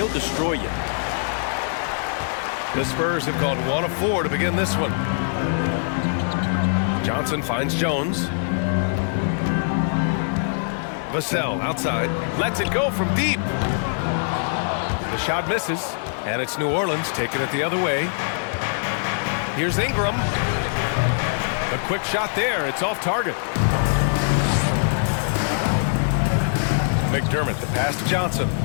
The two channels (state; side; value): silent; right; 63 dB below the other